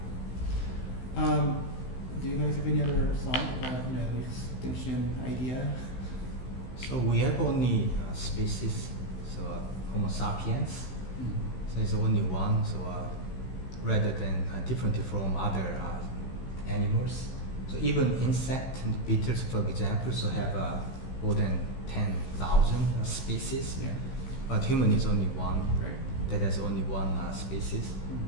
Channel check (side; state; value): right; late; 16 ms